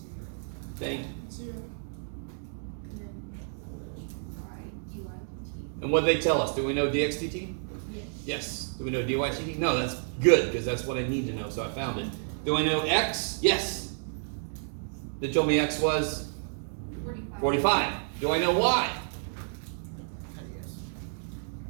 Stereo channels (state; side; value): silent; left; digital silence